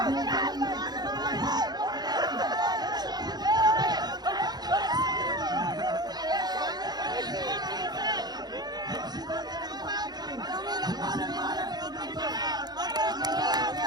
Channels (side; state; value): left; late; 0.20 ms